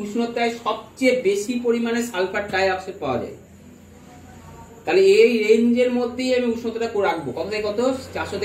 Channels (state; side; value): identical; both; correlation 1.00